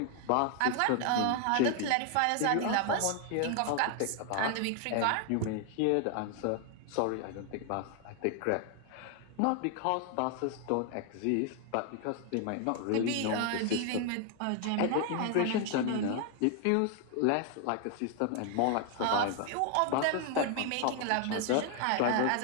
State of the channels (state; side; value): different; both; correlation 0.00